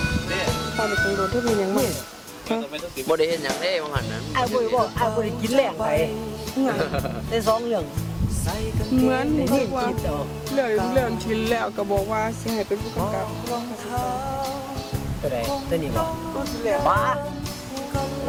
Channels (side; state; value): both; identical; correlation 1.00